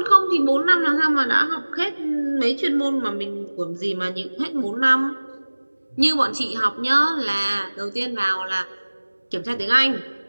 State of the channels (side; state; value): both; inverted; correlation -1.00